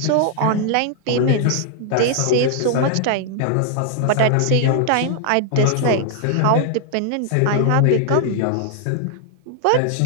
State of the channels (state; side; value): different; both; correlation 0.00